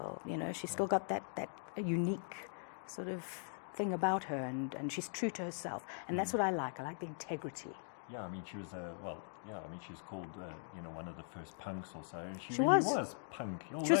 You know, she's still got that unique sort of thing about her, and she's true to herself. And that's what I like. I like the integrity. Yeah, I mean, she was she was called, one of the first punks or so, and she She really was. was punk. She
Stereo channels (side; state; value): right; silent; digital silence